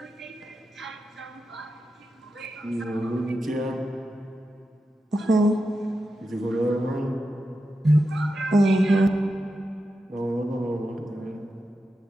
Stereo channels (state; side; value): normal; both; correlation 0.89